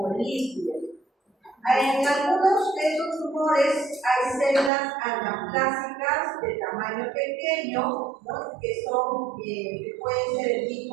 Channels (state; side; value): drops out; left; at 4.7 s